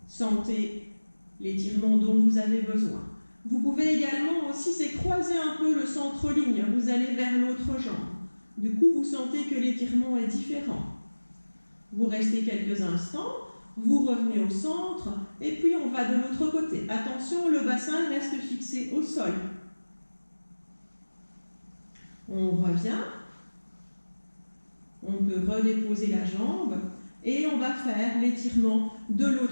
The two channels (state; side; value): inverted; both; correlation -1.00